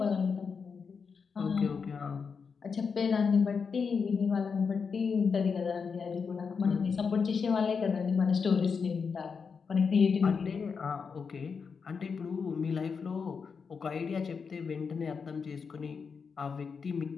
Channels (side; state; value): right; quieter; 5.6 dB